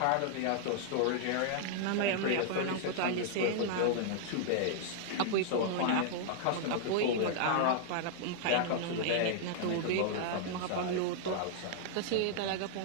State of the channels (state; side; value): different; both; correlation -0.01